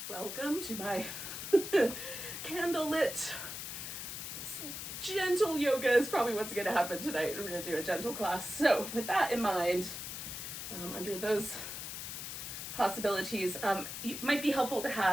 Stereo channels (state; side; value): noise; left; hiss, 7 dB below the sound